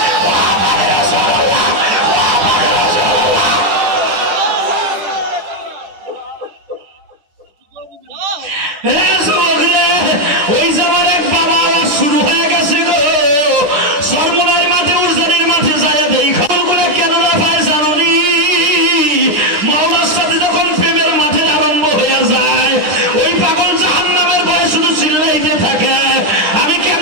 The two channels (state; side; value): late; left; 10 ms